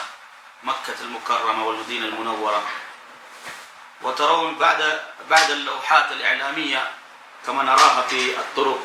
مكة المكرمة والمدينة المنورة. وترون بعد اللوحات الإعلامية كما نراها في الطرق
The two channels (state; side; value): identical; both; correlation 1.00